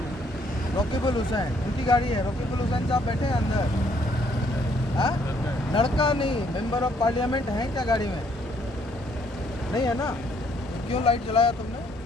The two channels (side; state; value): both; normal; correlation 0.67